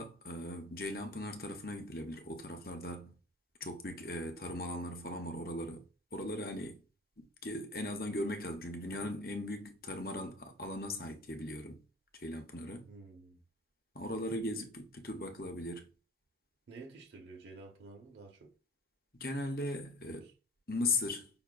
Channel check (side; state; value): both; normal; correlation 0.42